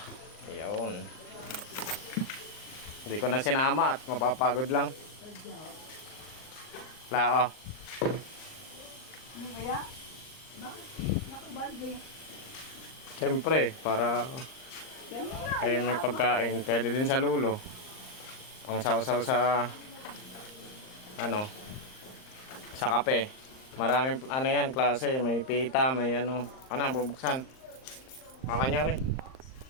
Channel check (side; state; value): right; late; 38 ms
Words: Ayan. Hindi ko na sinama at mapapagod lang. Lao. Ano kaya? Nakabalde. Siyempre, para Yan mo na. kayo may pagkain. Pwede din sa lulo. Pang sausaw sa sa kape. Maraming yan klase, may pita, may bubuksan. Makanyari.